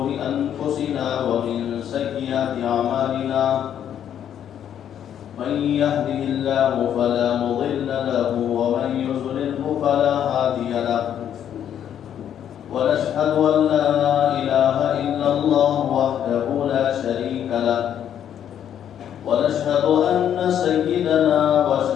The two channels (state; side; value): quieter; right; 9.7 dB